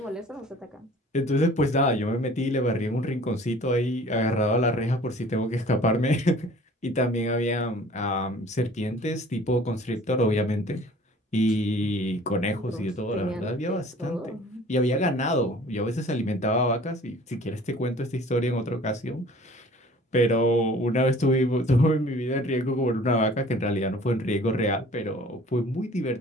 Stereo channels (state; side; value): normal; both; correlation 0.49